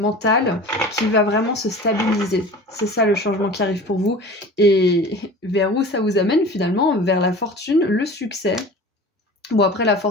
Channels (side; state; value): both; normal; correlation 0.39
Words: qui va vraiment se stabiliser. C'est ça le changement qui arrive pour vous. Et vers où ça vous amène finalement? Vers la fortune, le succès. Bon, après, la